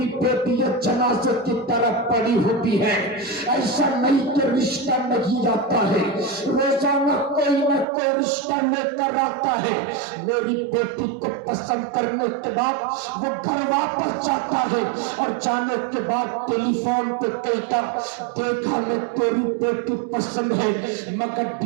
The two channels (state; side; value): drops out; left; at 7.9 s